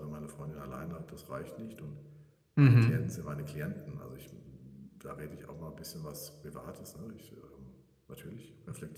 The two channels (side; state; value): both; identical; correlation 1.00